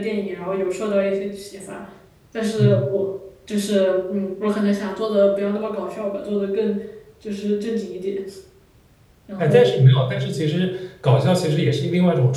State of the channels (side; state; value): both; identical; correlation 1.00